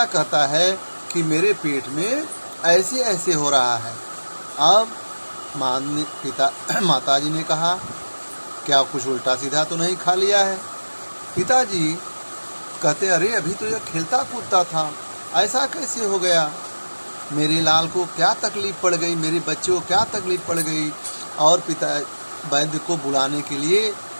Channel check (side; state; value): both; inverted; correlation -1.00